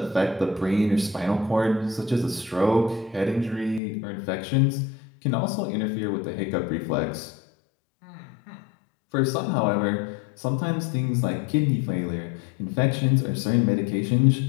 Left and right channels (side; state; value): right; drops out; at 3.8 s